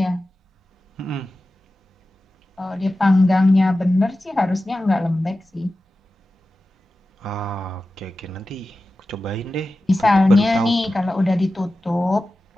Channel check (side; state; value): both; normal; correlation 0.94